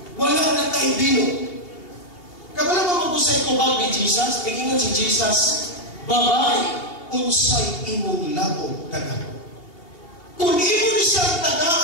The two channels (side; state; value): right; late; 2.8 ms